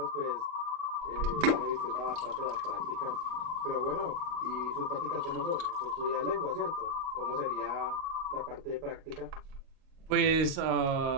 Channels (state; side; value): late; left; 38 ms